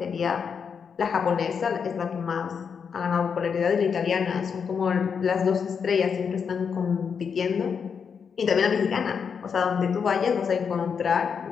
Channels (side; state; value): right; quieter; 6.5 dB